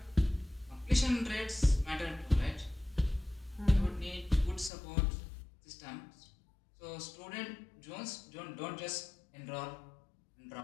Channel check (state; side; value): drops out; right; at 4.7 s